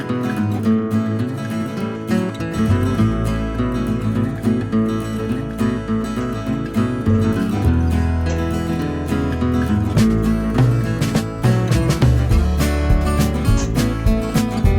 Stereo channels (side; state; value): both; identical; correlation 1.00